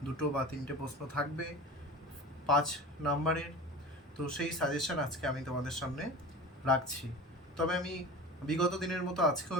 2 বা 3টে প্রশ্ন থাকবে 5 নাম্বারের। তো সেই সাজেশন আজকে আমি তোমাদের সামনে রাখছি। তবে আমি বিগত দিনের মতো আজকেও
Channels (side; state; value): both; normal; correlation 0.34